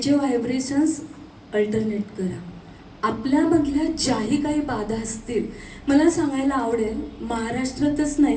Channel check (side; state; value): both; identical; correlation 1.00